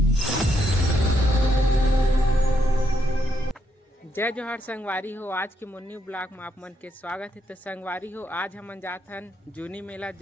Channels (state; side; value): normal; both; correlation 0.77